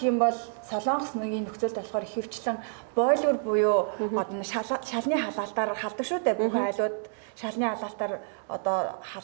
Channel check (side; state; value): left; silent; 59 dB below the other